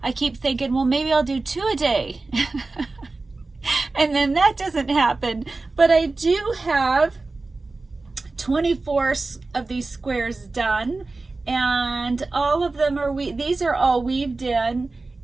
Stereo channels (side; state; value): left; quieter; 3.5 dB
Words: I keep thinking, well, maybe I'll do 2 a day. And then that doesn't happen. But I do have 24 of these squares done, and all of them are these are all weaved in,